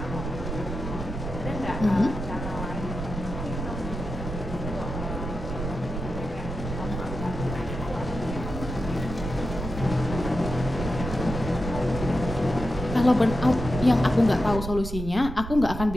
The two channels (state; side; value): noise; right; rumble, 6 dB below the sound